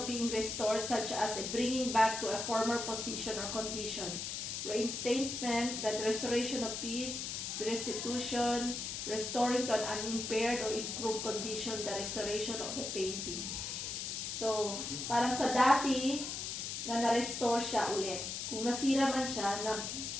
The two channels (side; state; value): left; noise; hiss, 4 dB below the sound